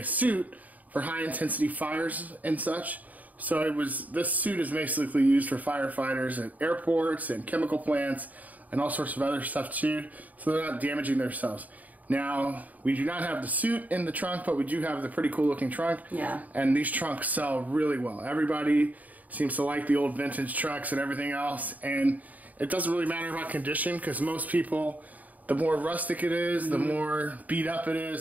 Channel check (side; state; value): left; late; 0.078 ms